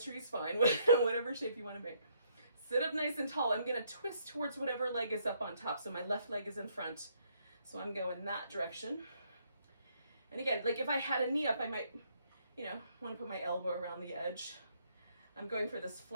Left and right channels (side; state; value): both; inverted; correlation -0.71